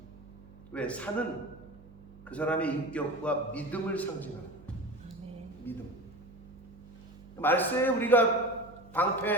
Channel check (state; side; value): noise; right; hum, 21 dB below the sound